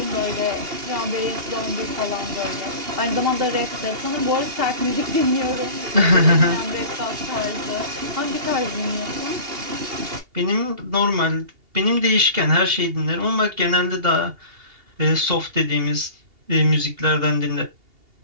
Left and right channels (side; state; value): left; late; 2.8 ms